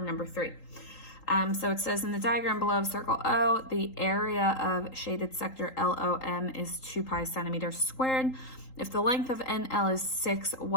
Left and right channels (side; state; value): right; late; 3.8 ms